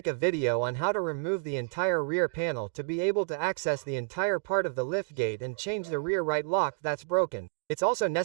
a video on how to remove the entire rear panel to be able to access the entire part of the liftgate and change the rear right lock that's broken. It's also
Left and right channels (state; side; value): silent; left; digital silence